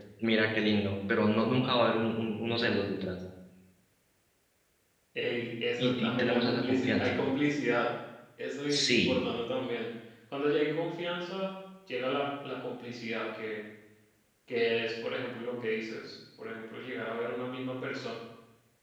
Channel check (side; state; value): both; identical; correlation 1.00